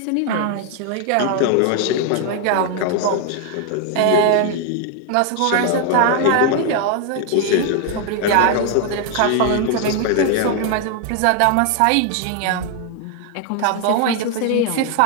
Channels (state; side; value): different; both; correlation 0.00